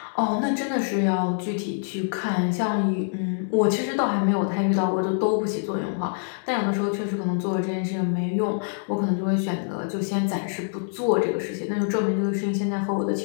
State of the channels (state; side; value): silent; right; digital silence